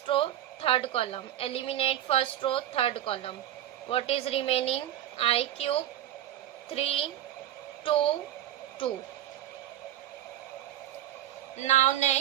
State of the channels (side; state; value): left; quieter; 12.3 dB